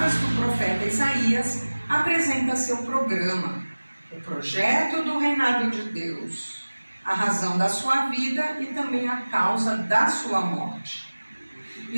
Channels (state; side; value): inverted; both; correlation -1.00